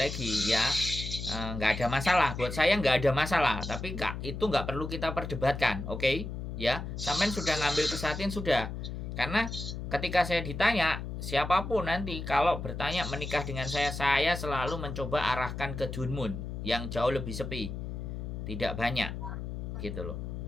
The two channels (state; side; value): noise; left; hum, 6 dB below the sound